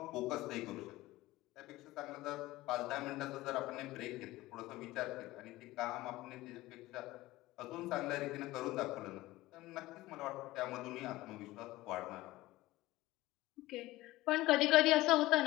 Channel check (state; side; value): quieter; right; 18.1 dB